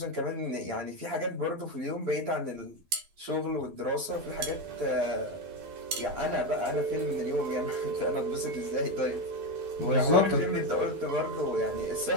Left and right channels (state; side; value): late; left; 12 ms